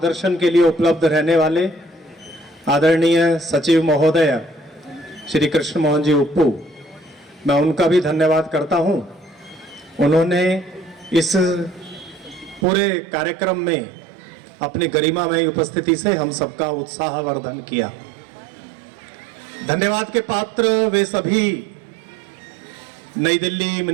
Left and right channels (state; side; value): drops out; left; at 12.7 s